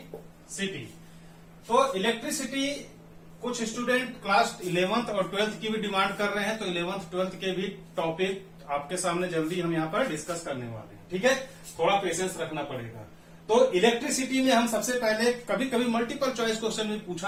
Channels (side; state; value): both; identical; correlation 1.00